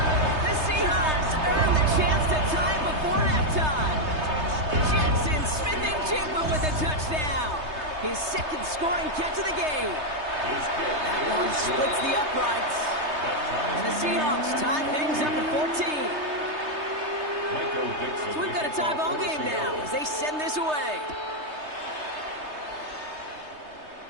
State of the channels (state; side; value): late; left; 3.3 ms